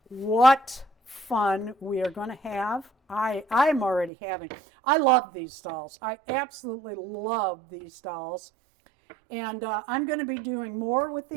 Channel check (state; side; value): drops out; left; at 4.1 s